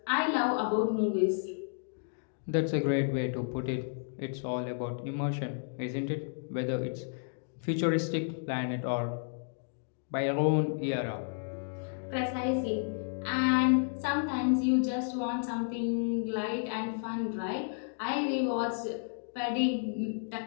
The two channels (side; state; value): right; silent; digital silence